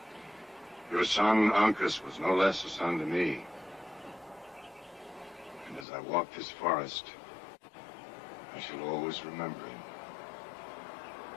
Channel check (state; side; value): drops out; right; at 5.9 s